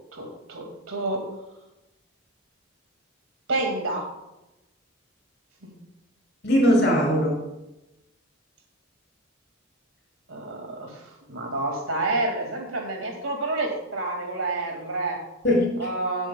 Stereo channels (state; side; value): normal; both; correlation 0.17